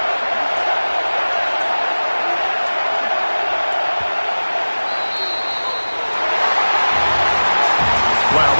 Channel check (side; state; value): both; inverted; correlation -1.00